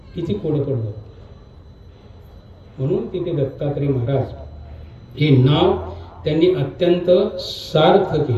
किती कोडं पडलं. म्हणून तिथे दत्तात्रय महाराज हे नाव त्यांनी अत्यंत सार्थ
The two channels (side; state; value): both; identical; correlation 1.00